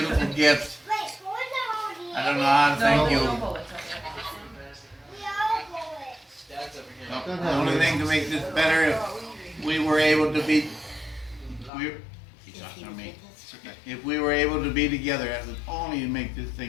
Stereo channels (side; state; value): right; drops out; at 11.7 s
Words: gift. I don't know how to thank you. The only thing to make this better, if we were able to be, she's talking to me. If we were able to be together, that would only make this